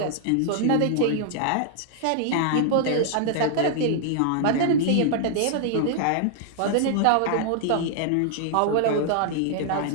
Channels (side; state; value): both; different; correlation 0.00